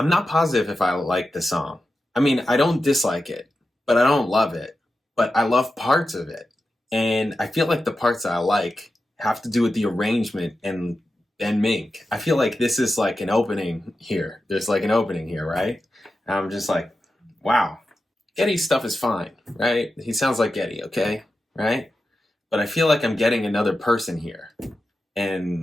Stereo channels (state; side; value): normal; both; correlation 0.91